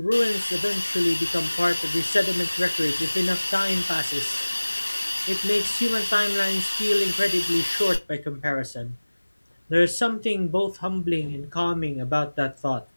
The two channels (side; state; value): both; inverted; correlation -1.00